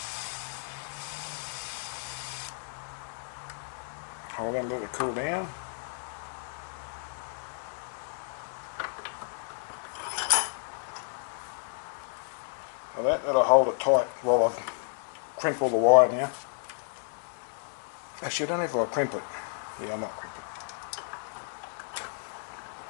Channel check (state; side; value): silent; right; digital silence